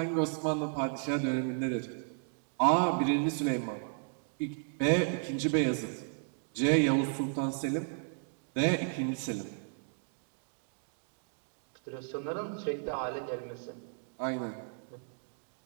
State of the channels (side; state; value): left; silent; digital silence